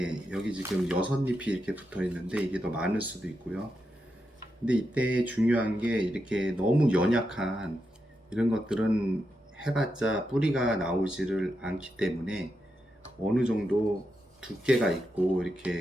여기 지금 6잎이 이렇게 붙어 있는데 이게 더 많을 수도 있고요. 근데 이때 중요한 게 이렇게 너무 연약한 이런 것들은 해봤자 뿌리가 나오지를 않기 때문에 어느 정도 두께가 있고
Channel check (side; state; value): both; normal; correlation 0.86